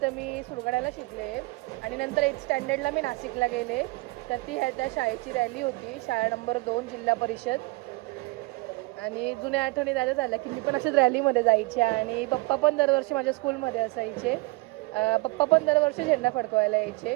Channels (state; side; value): quieter; left; 24.4 dB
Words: मी सुरगाण्याला शिकले आणि नंतर 8th स्टँडर्डला मी नाशिकला गेले. तर ती त्या शाळेची रॅली होती, शाळा नंबर 2 जिल्हा परिषद. आणि जुन्या आठवणी जायला झाल्या की मी पण अशाच रॅलीमध्ये जायचे आणि पप्पा पण दरवर्षी माझ्या स्कूलमध्ये असायचे. पप्पा पण दरवर्षी झेंडा फडकवायला यायचे.